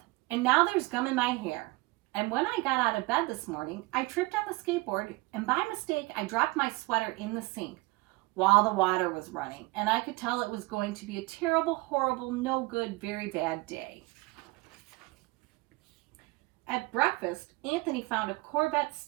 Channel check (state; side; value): quieter; left; 23.3 dB